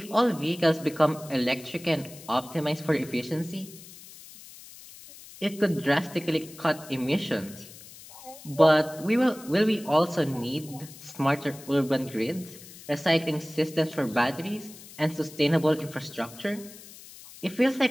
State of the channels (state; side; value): noise; left; hiss, 18 dB below the sound